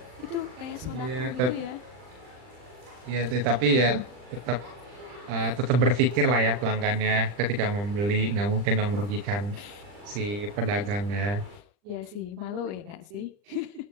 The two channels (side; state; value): left; late; 40 ms